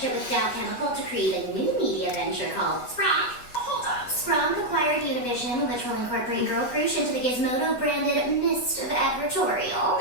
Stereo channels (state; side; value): late; right; 8.2 ms